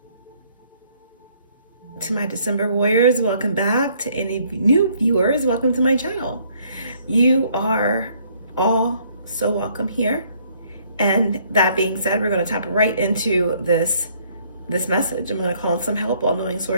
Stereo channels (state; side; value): inverted; both; correlation -0.64